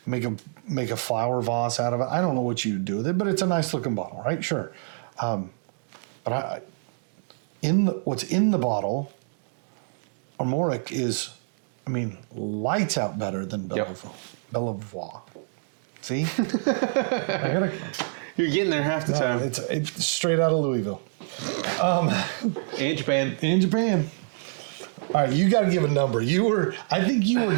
make a flower vase out of it. I don't know what you do with it, but it's a nice looking bottle, right? Sure. But what's in the bottle, Armorik is, lights out better than Bellevoye. See? You're getting there half the time. It's straight out of Louisville. And Japan. In Japan. All right, you got to give a number. I think you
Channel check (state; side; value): silent; left; digital silence